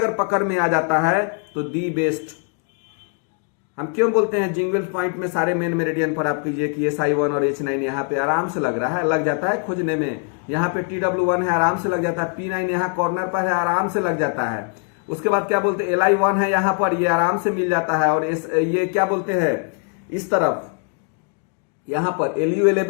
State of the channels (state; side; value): quieter; right; 37.0 dB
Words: पकड़ में आ जाता है तो दी बेस्ट हम क्यों बोलते हैं जिंगवेल्स पॉइंट में सारे मेन मेरिडियन पर आप कीजिए कि SI1 और H9 यहाँ पे आराम से लग रहा है, लग जाता है खोजने में। यहाँ पे TW1 है, आराम से लग जाता है। P9 यहाँ कॉर्नर पर है, आराम से लग जाता है। उसके बाद क्या बोलते हैं LI1 है यहाँ पर, ये आराम से मिल जाता है। और ये क्या बोलते हैं इस तरफ यहाँ पर